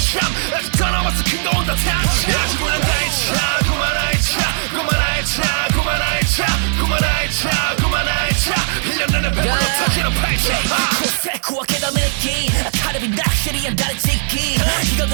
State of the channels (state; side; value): silent; left; 68 dB below the other